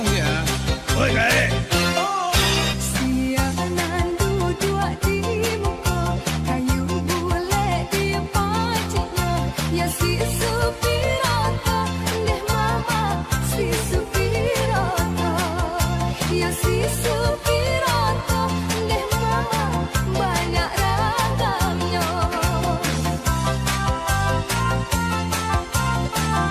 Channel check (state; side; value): identical; both; correlation 1.00